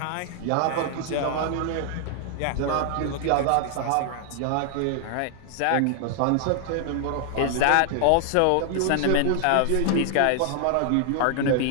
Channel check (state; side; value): different; both; correlation 0.00